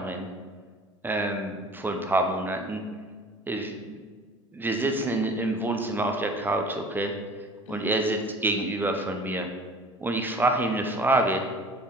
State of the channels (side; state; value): both; normal; correlation 0.45